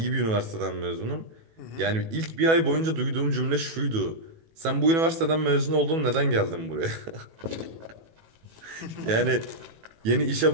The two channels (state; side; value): late; left; 18 ms